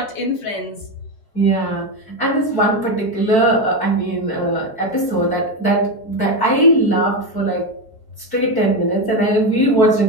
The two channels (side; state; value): right; late; 4.5 ms